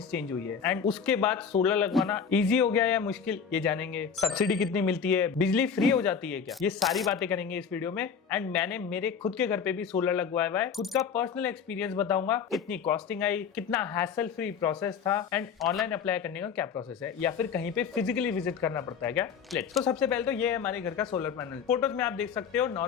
चेंज हुई है एंड उसके बाद सोलर लगवाना इजी हो गया या मुश्किल, ये जानेंगे। सब्सिडी कितनी मिलती है, बिजली फ्री हो जाती है क्या, ये सारी बातें करेंगे इस वीडियो में। एंड मैंने मेरे खुद के घर पे भी सोलर लगवाया हुआ है, खुद का पर्सनल एक्सपीरियंस बताऊंगा, कितनी कॉस्टिंग आई, कितना हैसल फ्री प्रोसेस था एंड ऑनलाइन अप्लाई करने का क्या प्रोसेस है, या फिर कहीं पे फिजिकली विजिट करना पड़ता है क्या। लेट्स। तो सबसे पहले तो ये है हमारे घर का सोलर पैनल। फोटोज में आप देख सकते हो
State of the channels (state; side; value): quieter; right; 6.8 dB